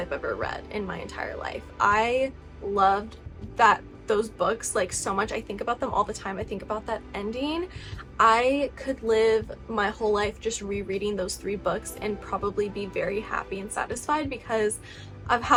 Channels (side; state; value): both; identical; correlation 1.00